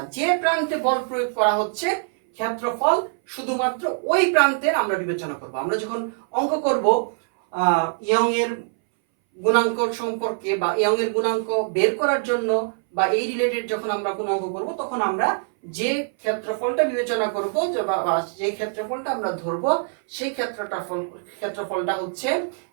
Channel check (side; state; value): left; silent; 61 dB below the other